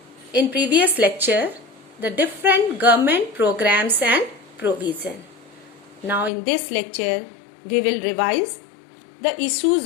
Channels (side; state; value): right; drops out; at 6.3 s